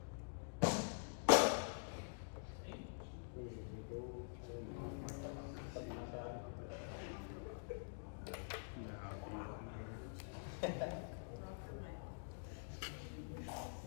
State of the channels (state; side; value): silent; right; digital silence